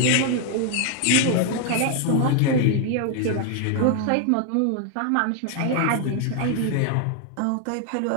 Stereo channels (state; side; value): different; both; correlation 0.00